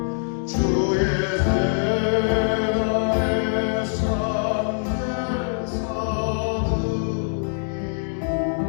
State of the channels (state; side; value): silent; right; 63 dB below the other